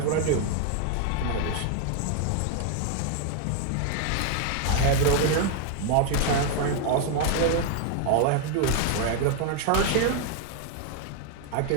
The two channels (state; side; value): different; both; correlation 0.00